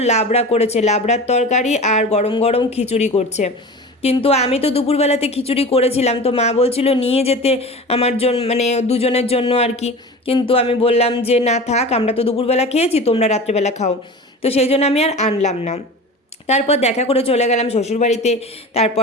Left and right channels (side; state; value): both; normal; correlation 0.34